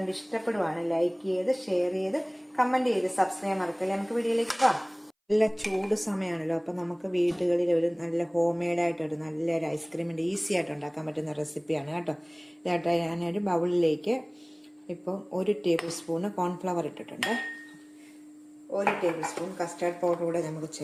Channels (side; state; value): both; identical; correlation 1.00